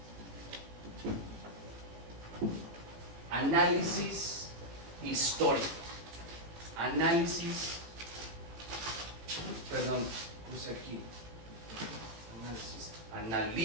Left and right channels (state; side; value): late; left; 18 ms